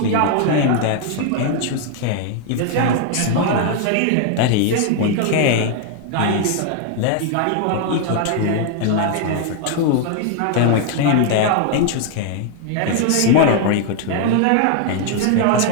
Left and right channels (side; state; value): both; different; correlation 0.00